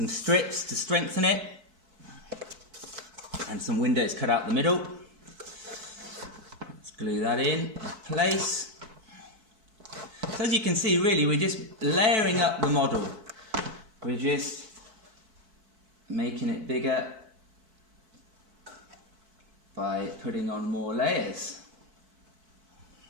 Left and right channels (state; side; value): late; left; 4.6 ms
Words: strips to strengthen it, and some windows cut out the middle. Let's glue that in place. So as you can see, really we're just layering up the model. We're just making it bigger by putting on more layers.